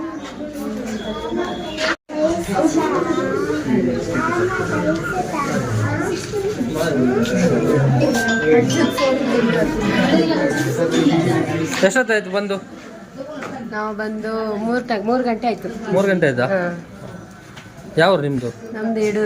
ಎಷ್ಟೊತ್ತಾಯ್ತು ಬಂದು? ನಾವು ಬಂದು 3 ಗಂಟೆ ಆಯ್ತು. 3 ಗಂಟೆ ಆಯ್ತಾ? ಯಾವ ನಿಮ್ಮದು? ನಮ್ದು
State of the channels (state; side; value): identical; both; correlation 1.00